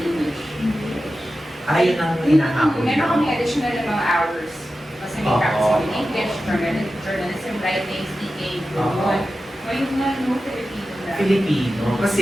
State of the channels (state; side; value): normal; both; correlation 0.93